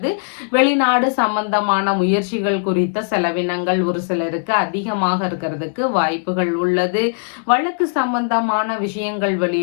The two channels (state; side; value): silent; right; 67 dB below the other